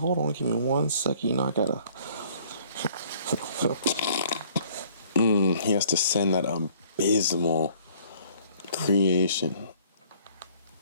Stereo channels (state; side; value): inverted; both; correlation -0.57